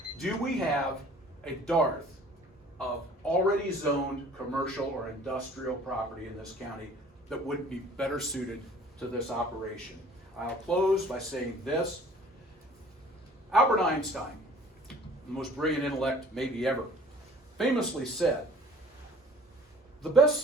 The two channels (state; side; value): normal; both; correlation 0.51